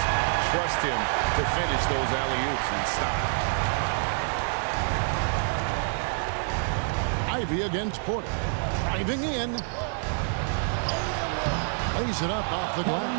trust him to finish those alley-oops in style. Ivy against Porter. Driving in. Lays it up off the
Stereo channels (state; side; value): silent; left; 60 dB below the other